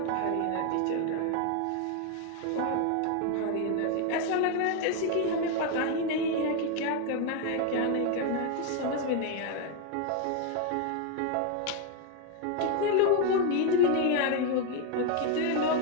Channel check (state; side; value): different; both; correlation 0.01